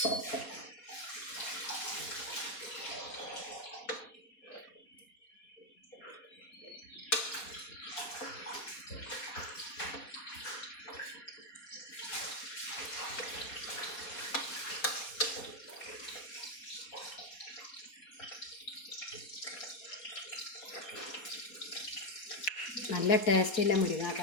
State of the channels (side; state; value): right; late; 4.2 ms